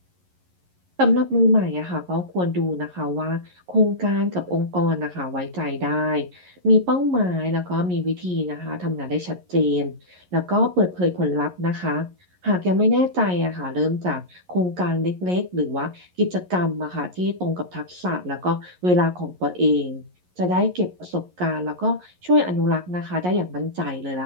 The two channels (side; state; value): left; late; 11 ms